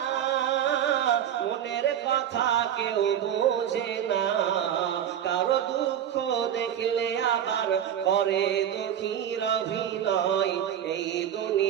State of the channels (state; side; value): quieter; left; 9.9 dB